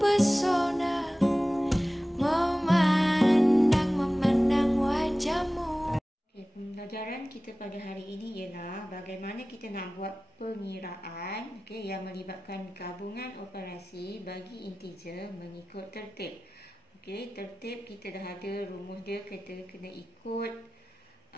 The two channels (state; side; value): normal; both; correlation 0.97